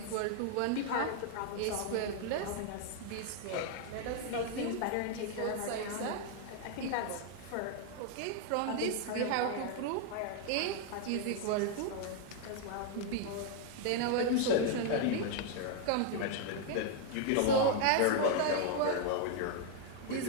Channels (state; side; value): different; both; correlation 0.00